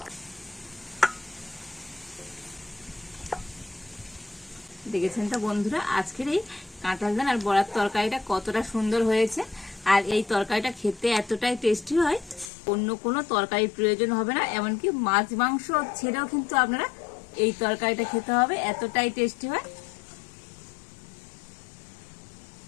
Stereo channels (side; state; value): right; drops out; at 12.5 s